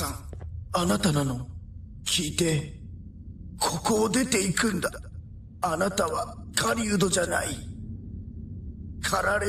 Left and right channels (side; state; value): both; identical; correlation 1.00